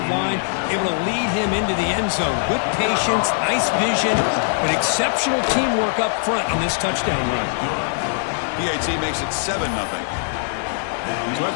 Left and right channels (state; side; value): silent; right; digital silence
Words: line, able to lead him into the end zone. Good patience, nice vision, but exceptional teamwork up front on this touchdown run. PAT makes it 7-0. So